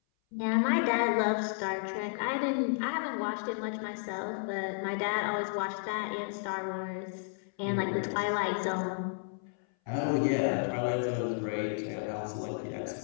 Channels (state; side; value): silent; right; 56 dB below the other